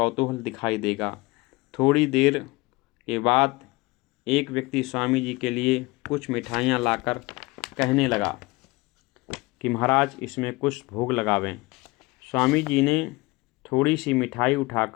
दिखाई देगा। थोड़ी देर के बाद एक व्यक्ति स्वामी जी के लिए कुछ मिठाइयाँ लाकर कहने लगा कि महाराज इसमें कुछ भोग लगावें। स्वामी जी ने थोड़ी सी मिठाई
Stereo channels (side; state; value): right; quieter; 23.0 dB